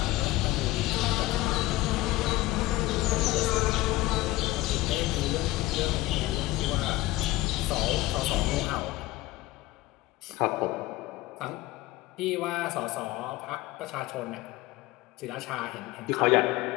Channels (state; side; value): quieter; right; 18.1 dB